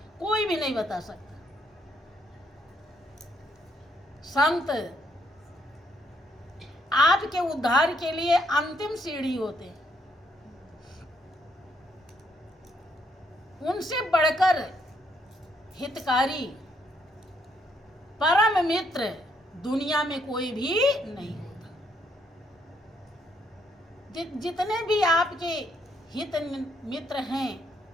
कोई भी नहीं बता सकता। संत आपके उद्धार के लिए अंतिम सीढ़ी होते हैं। उनसे बढ़कर हितकारी, परम मित्र दुनिया में कोई भी नहीं होता। जितने भी आपके हित मित्र हैं,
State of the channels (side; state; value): both; normal; correlation 0.73